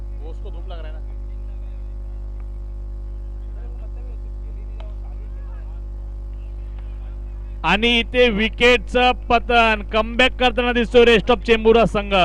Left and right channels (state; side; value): identical; both; correlation 1.00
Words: वो उसको धूप लग रहा है ना. इधर को मतलब है उसकी खेल ही नहीं रहा. वो शादी खेल रहा है. आणि इथे विकेटचं पतन. कमबॅक करताना दिसतोय रेस्ट ऑफ चेंबूर संघ.